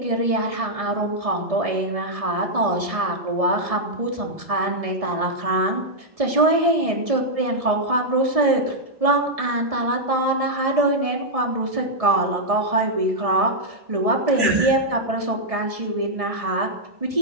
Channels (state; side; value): late; left; 1.6 ms